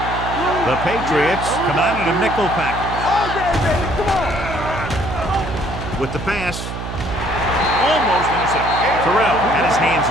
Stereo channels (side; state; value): right; noise; hum, 7 dB below the sound